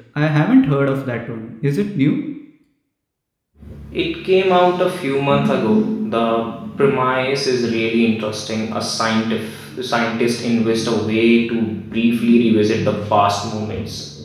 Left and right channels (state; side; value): identical; both; correlation 1.00